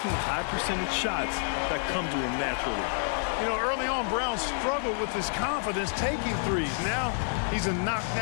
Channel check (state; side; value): silent; right; digital silence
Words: high percentage shots that come to him naturally. You know, early on, Brown struggled with his confidence taking threes. Now he's a